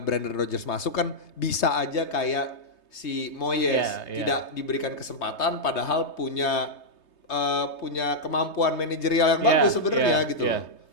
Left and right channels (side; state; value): right; late; 3.2 ms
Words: Brendan Rodgers masuk kan bisa aja kayak si Moyes tidak diberikan kesempatan padahal punya kemampuan manajerial yang bagus sebenarnya gitu loh.